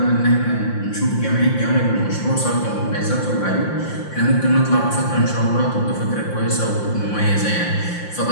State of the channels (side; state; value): right; late; 5.7 ms